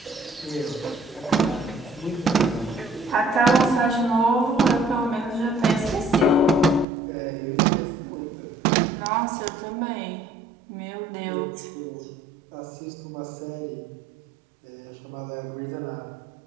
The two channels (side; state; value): left; drops out; at 6.9 s